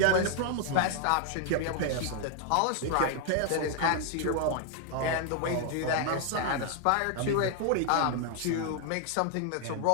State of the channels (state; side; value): different; both; correlation 0.00